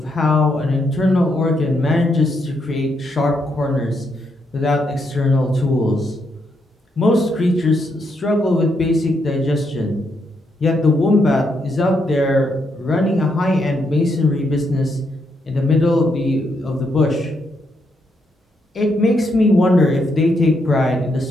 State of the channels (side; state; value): both; normal; correlation 0.78